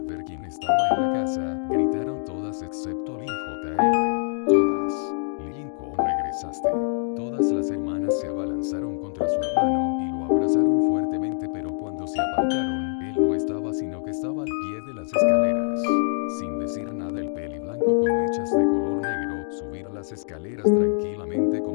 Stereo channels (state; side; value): silent; right; digital silence